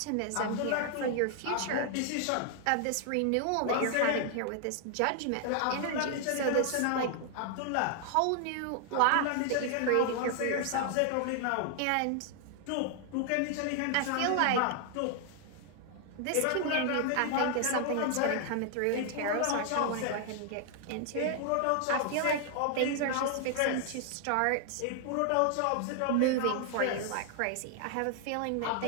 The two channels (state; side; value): different; both; correlation 0.00